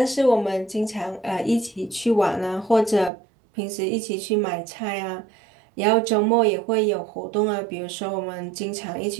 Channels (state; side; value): drops out; left; at 3.1 s